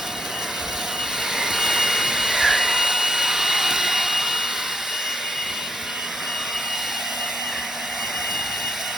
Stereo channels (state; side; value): normal; both; correlation 0.72